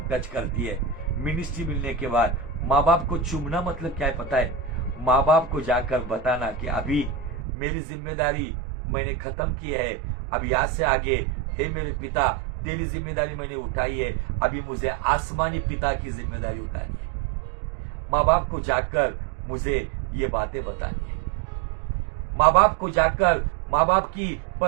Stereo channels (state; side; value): drops out; left; at 7.5 s